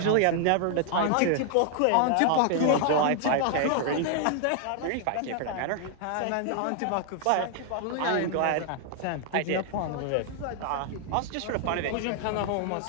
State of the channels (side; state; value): both; different; correlation 0.00